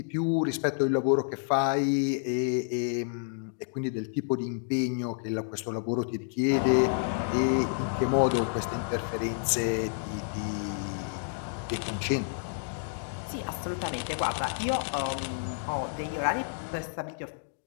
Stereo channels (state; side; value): silent; right; digital silence